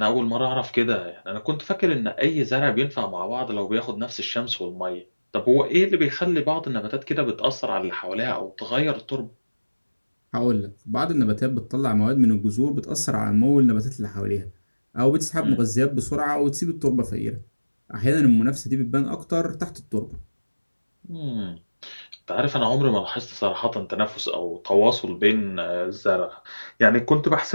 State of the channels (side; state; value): both; inverted; correlation -1.00